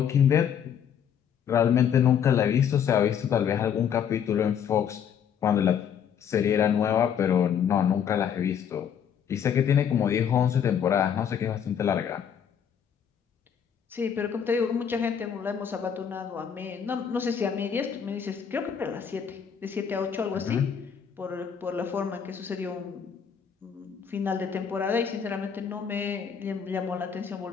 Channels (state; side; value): quieter; right; 8.0 dB